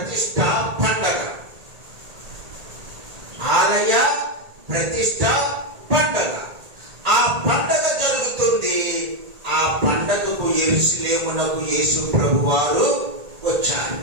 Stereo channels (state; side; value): late; left; 1.8 ms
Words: పండగ. ఆలయ ప్రతిష్ఠ పండగ. ఆ పండగ జరుగుతుంది. ఆ పండగకు యెరూషలేమునకు యేసు ప్రభువారు వచ్చారు.